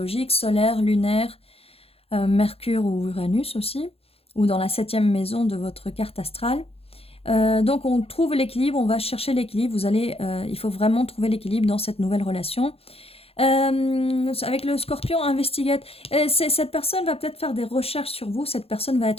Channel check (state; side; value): late; right; 0.28 ms